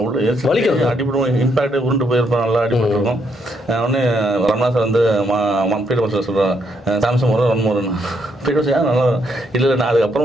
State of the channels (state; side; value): normal; both; correlation 0.75